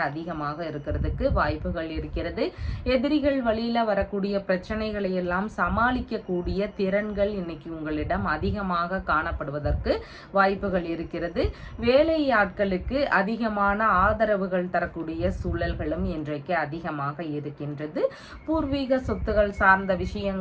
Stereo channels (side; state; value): both; identical; correlation 1.00